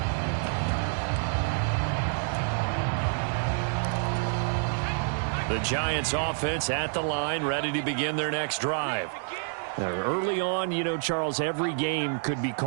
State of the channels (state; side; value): silent; left; 58 dB below the other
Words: The Giants offense at the line, ready to begin their next drive. Early on, you know, Charles, every game could be